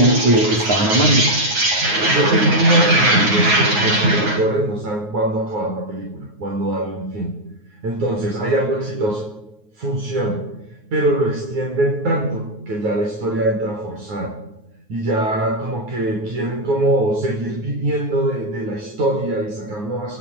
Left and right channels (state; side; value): late; left; 9.5 ms